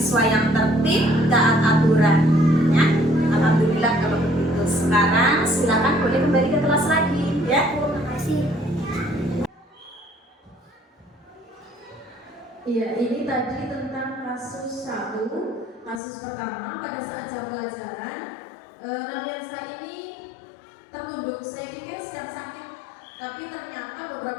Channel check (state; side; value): drops out; right; at 16.0 s